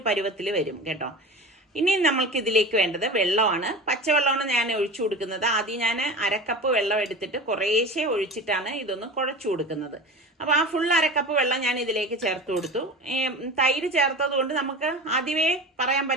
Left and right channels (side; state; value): both; normal; correlation 0.31